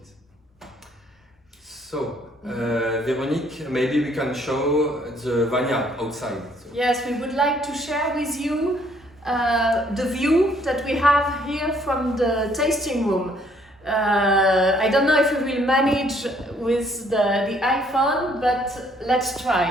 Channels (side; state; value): both; normal; correlation 0.65